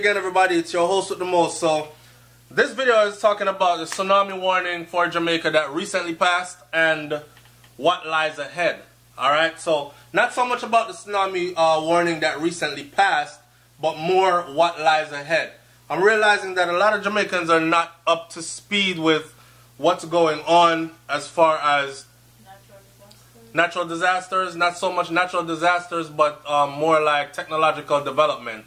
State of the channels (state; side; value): identical; both; correlation 1.00